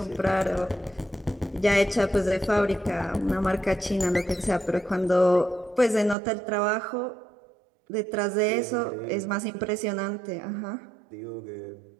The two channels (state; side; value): drops out; left; at 6.2 s